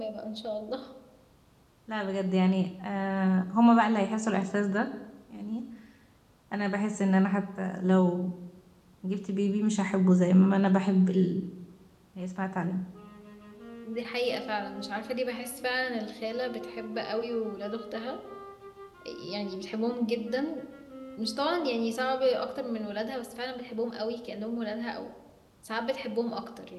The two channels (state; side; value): identical; both; correlation 1.00